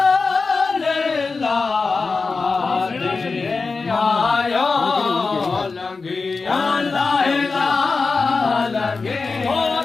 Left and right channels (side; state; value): right; quieter; 4.3 dB